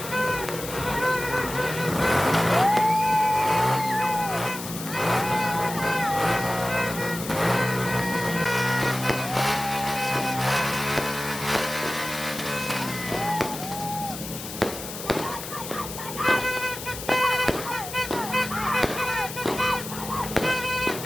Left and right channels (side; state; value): left; noise; hiss, 10 dB below the sound